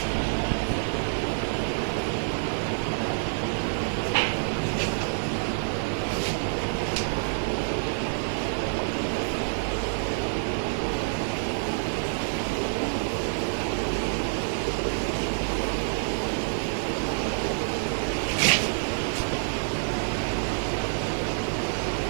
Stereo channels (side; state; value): left; silent; digital silence